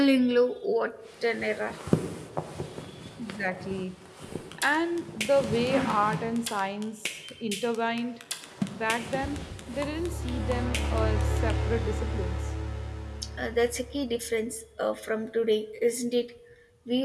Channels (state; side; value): identical; both; correlation 1.00